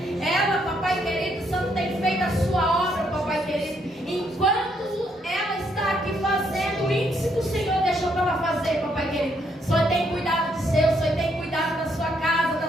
Ela, papai querido, Santo, tem feito a sua obra, papai querido. Enquanto ela está aqui fazendo o índice que o Senhor deixou para ela fazer, papai querido, o Senhor tem cuidado de seu, o Senhor tem cuidado da sua casa,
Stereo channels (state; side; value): normal; both; correlation 0.73